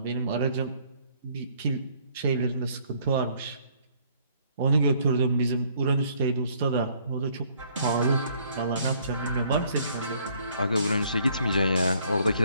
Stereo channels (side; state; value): both; inverted; correlation -0.63